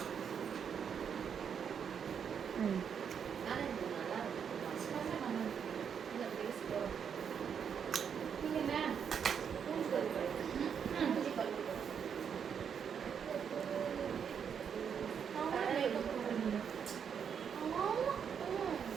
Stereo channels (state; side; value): quieter; left; 7.4 dB